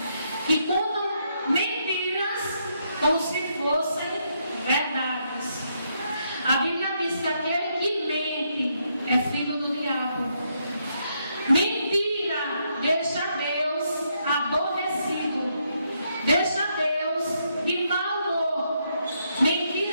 que contam mentiras como se fossem verdades. A Bíblia diz que aquele que mente é filho do diabo. Mentira deixa Deus aborrecido, deixa Deus de mau humor.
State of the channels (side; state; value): both; inverted; correlation -0.77